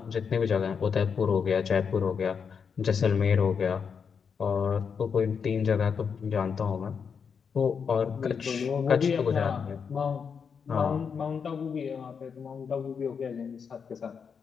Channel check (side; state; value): right; quieter; 6.4 dB